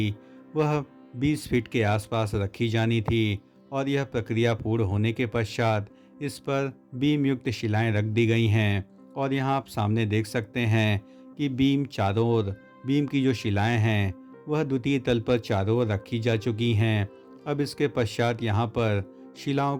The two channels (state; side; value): identical; both; correlation 1.00